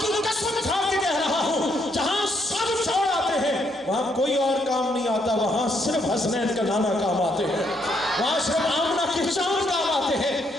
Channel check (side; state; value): both; normal; correlation 0.73